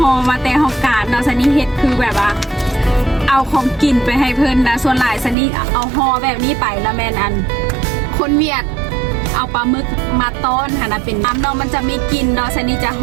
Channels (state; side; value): drops out; left; at 5.4 s